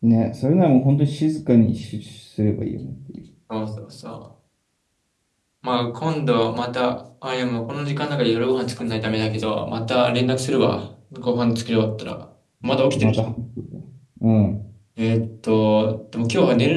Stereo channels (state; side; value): identical; both; correlation 1.00